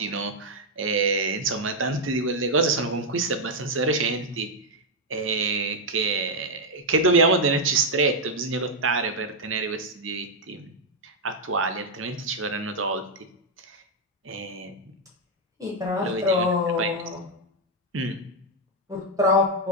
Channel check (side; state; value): both; normal; correlation -0.01